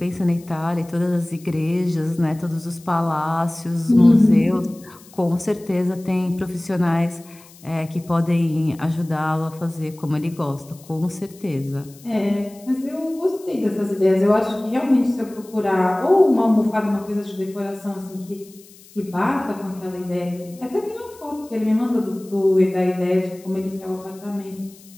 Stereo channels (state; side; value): noise; left; hiss, 24 dB below the sound